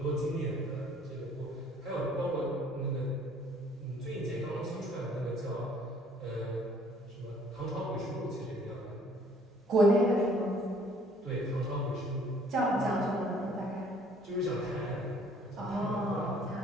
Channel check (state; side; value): normal; both; correlation 0.58